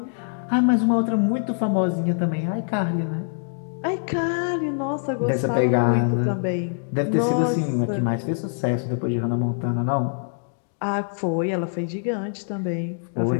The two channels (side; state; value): right; silent; digital silence